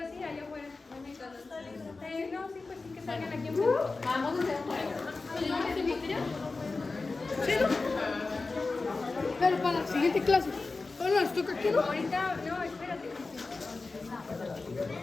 sí, allá afuera. No, sí, pues sí que salgan aquí enfrente. Vamos a hacer un juego. ¿Yo me invitaría? Sí, ¿no? Pero para la siguiente clase. Bueno, les toca aquí, ¿no? Ahorita, no, espérate.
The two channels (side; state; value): right; quieter; 3.8 dB